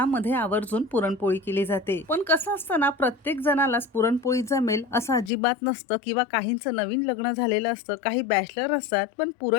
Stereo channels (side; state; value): right; drops out; at 5.3 s